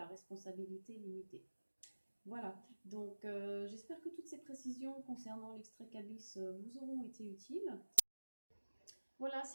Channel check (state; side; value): inverted; both; correlation -1.00